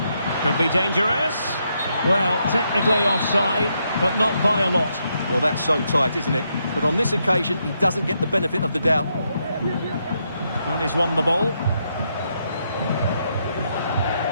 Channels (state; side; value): inverted; both; correlation -0.79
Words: Could be dangerous. Well, technically offside, but not by a lot. Well, that's so tight, isn't it? But on this occasion, he doesn't get the benefit of the doubt. Well, he's won the ball.